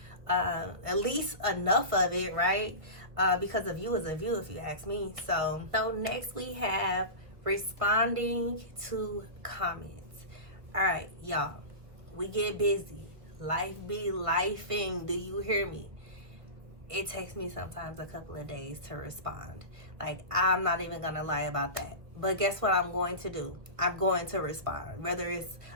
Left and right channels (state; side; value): late; left; 1.8 ms